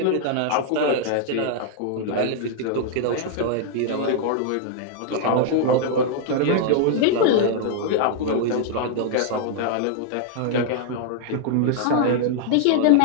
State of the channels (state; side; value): different; both; correlation -0.01